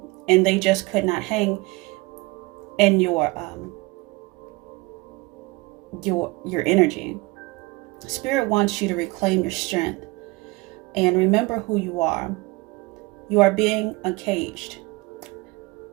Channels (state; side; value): quieter; left; 24.0 dB